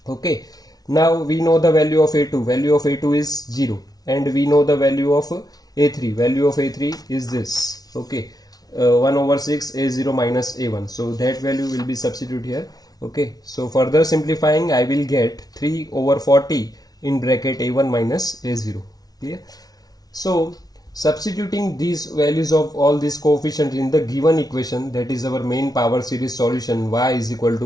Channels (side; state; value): right; late; 0.19 ms